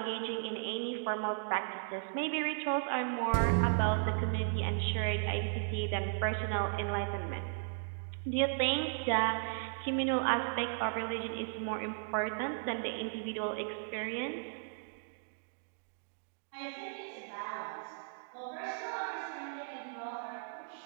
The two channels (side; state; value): left; silent; digital silence